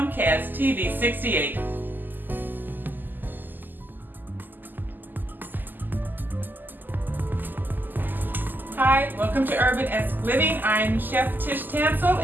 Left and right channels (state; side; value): late; left; 0.088 ms